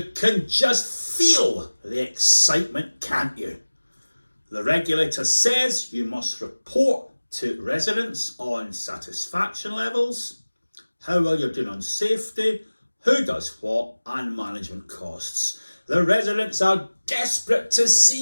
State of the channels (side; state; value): both; inverted; correlation -1.00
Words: can just feel the excitement, can't you? The regulator says you must report to residents on satisfaction levels, how well you're doing on safety, who does what, and management costs. The residents are desperate to